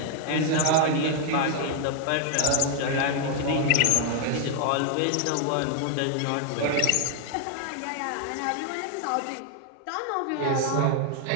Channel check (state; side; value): different; both; correlation 0.00